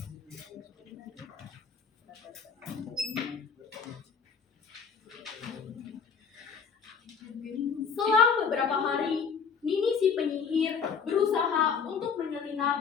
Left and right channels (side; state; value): right; quieter; 6.1 dB